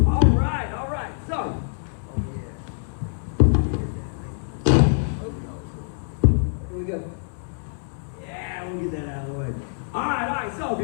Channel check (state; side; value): silent; right; digital silence